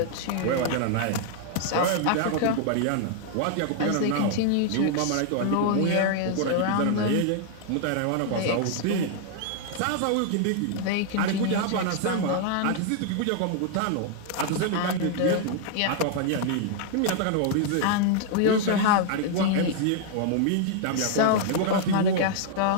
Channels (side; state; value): both; different; correlation 0.00